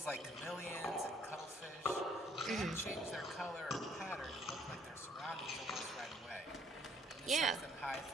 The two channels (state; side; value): normal; both; correlation 0.63